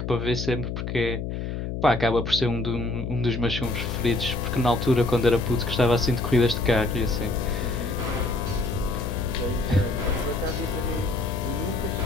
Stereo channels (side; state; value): left; noise; hum, 4 dB below the sound